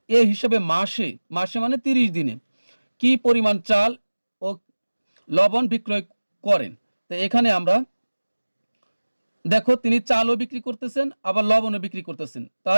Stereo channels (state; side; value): inverted; both; correlation -1.00